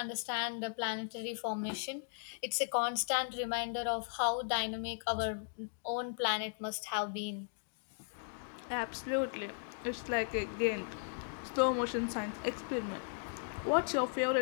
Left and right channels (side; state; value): right; silent; digital silence